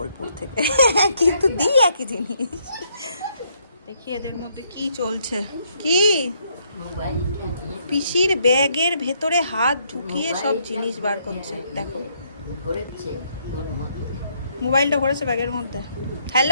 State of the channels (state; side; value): inverted; both; correlation -0.72